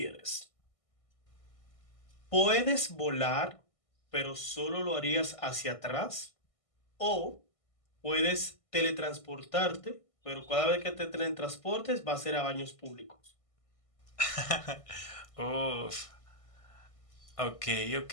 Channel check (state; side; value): late; right; 1.6 ms